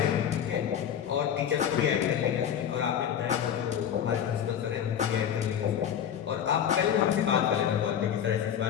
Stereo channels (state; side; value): quieter; right; 9.2 dB